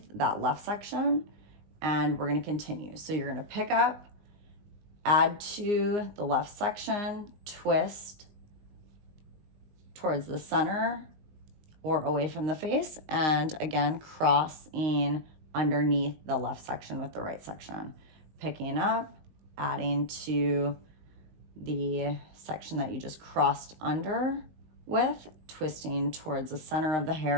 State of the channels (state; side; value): late; left; 19 ms